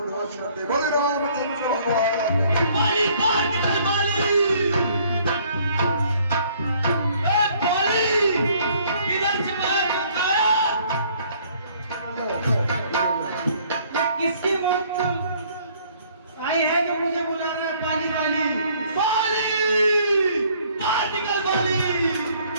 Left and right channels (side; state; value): both; inverted; correlation -0.61